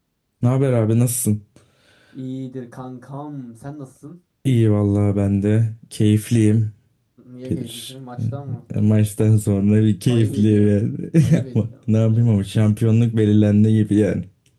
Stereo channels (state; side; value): identical; both; correlation 1.00